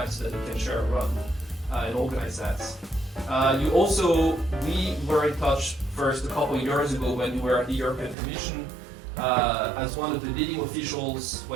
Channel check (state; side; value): drops out; left; at 8.2 s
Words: so that we can share a run and organize that. We were in touch first a couple of years ago when you were at the European Commission as one of the leading officials